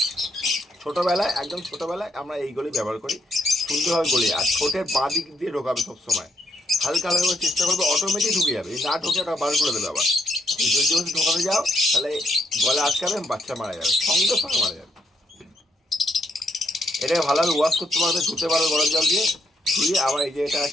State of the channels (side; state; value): both; normal; correlation 0.74